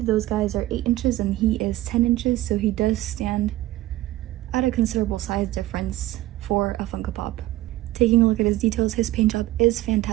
those guys are 8 inches and he is 10 inches, so he does stand at a considerable size difference for a Funko Pop. Taking a look at his details, his paint job is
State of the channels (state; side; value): quieter; left; 16.4 dB